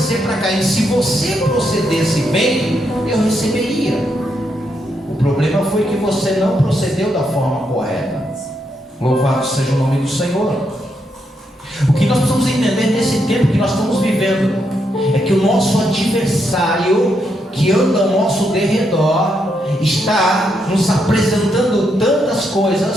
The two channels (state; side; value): normal; both; correlation 0.79